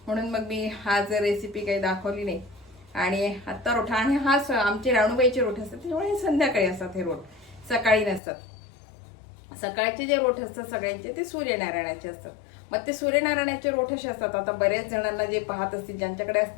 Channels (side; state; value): right; drops out; at 8.2 s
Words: म्हणून मग मी आज रेसिपी काही दाखवली नाही. आणि आत्ता रोठा आणि आमचे राणूबाईचे रोठ असतात, त्यामुळे संध्याकाळी असतात हे रोठ, सकाळी नसतात. सकाळचे जे रोठ असतात सगळ्यांचे ते सूर्यनारायणाचे असतात. मग ते सूर्यनारायणाचे रोठ असे असतात. आता बऱ्याच जणांना जे पाहत असतील, ज्यांच्याकडे